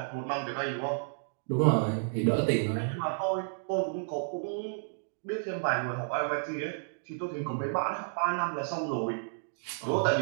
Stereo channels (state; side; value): silent; left; digital silence